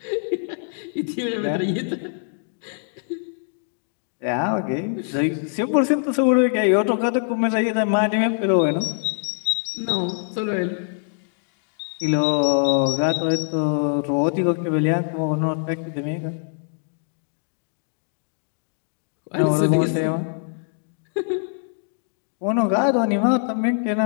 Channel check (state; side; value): silent; right; digital silence